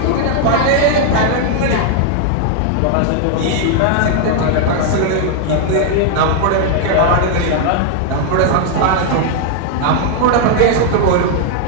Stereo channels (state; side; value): different; both; correlation 0.00